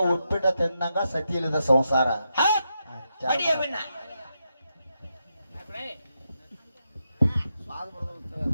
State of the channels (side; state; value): both; inverted; correlation -0.85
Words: ಉಪ್ಪಿಟ್ಟ ತಿನ್ನಂಗ ಸತಿ ಇಲ್ಲದ ಸಂಸಾರ ಅಡಿಯ ಬಿಣ್ಣ